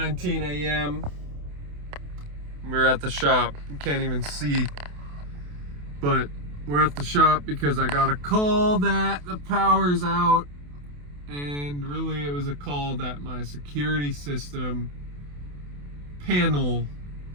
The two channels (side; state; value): left; late; 28 ms